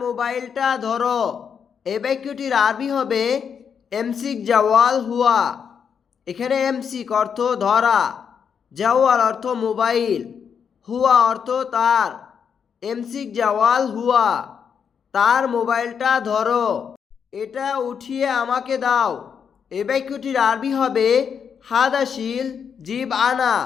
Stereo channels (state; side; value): quieter; right; 7.1 dB